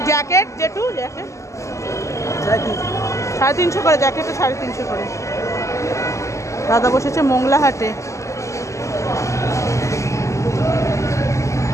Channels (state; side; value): late; right; 0.15 ms